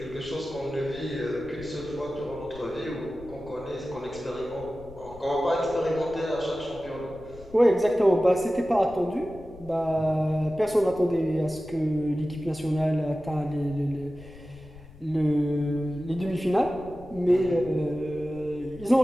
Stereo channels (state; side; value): noise; left; rumble, 19 dB below the sound